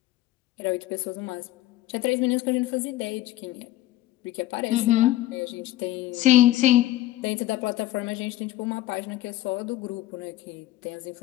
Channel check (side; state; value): right; quieter; 15.2 dB